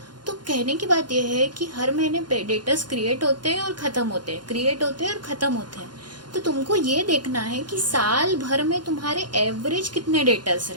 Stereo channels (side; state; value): left; late; 0.71 ms